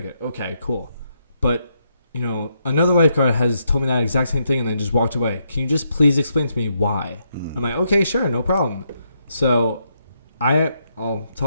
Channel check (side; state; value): both; inverted; correlation -0.78